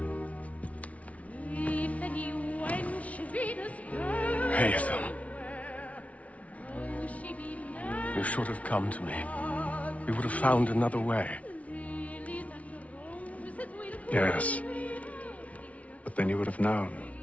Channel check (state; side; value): late; right; 0.066 ms